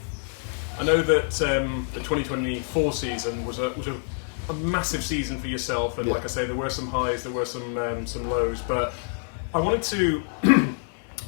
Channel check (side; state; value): right; silent; 61 dB below the other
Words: I know that the 2024 season was a massive season for yourself, and like I say, there were some highs, there were some lows. But I wanted to,